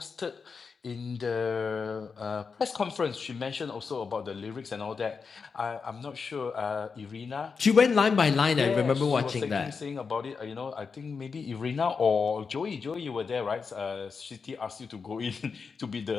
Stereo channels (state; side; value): quieter; right; 5.3 dB